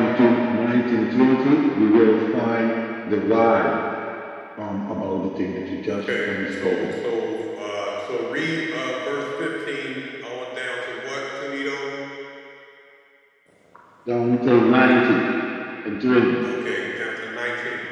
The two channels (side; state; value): both; identical; correlation 1.00